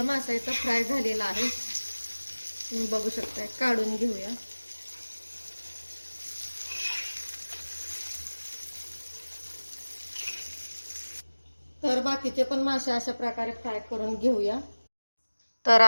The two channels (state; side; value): inverted; both; correlation -1.00